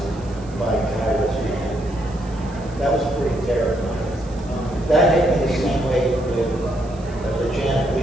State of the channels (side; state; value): right; noise; hiss, 25 dB below the sound